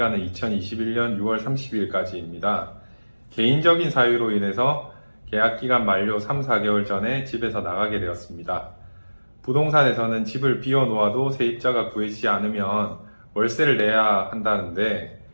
2021년 6월 30일까지입니다. 개인적인 사유로 인해서 계약 기간 만료 3, 4개월 전에 집에서 나가게 되었습니다. 부동산에서는 집을 비워놓아도 세입자가 구해지지 않으면 월세를 내야 한다는데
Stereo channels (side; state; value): both; inverted; correlation -1.00